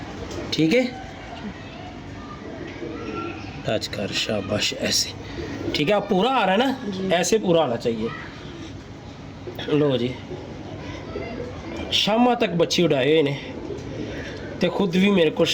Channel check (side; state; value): both; identical; correlation 1.00